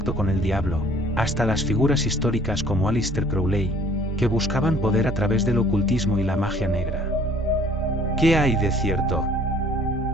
con el diablo, hasta las figuras históricas como Aleister Crowley, que buscaban poder a través del ocultismo y la magia negra. ¿Qué hay de cierto?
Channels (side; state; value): both; normal; correlation 0.55